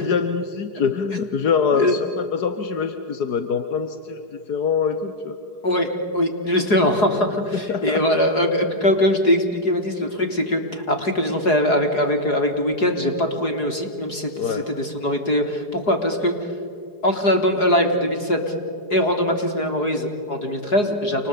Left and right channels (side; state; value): right; late; 4.8 ms